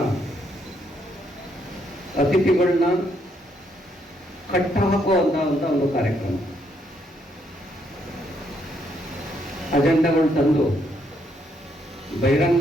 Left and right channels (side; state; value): both; normal; correlation 0.74